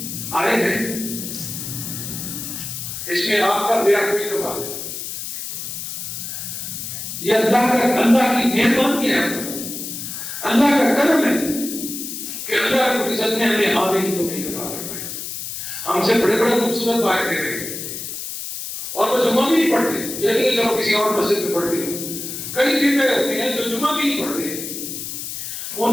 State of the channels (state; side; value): noise; left; hiss, 7 dB below the sound